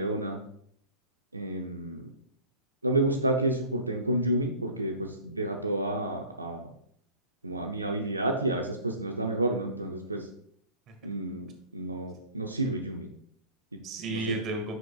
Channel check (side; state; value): both; inverted; correlation -0.46